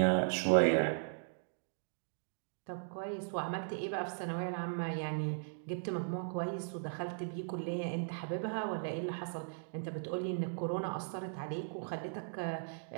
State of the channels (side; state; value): left; silent; digital silence